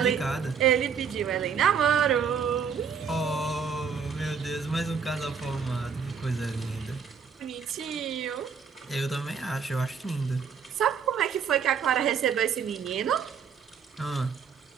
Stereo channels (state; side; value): quieter; left; 6.6 dB